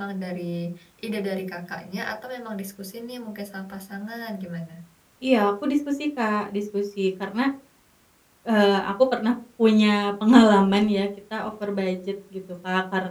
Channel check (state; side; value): identical; both; correlation 1.00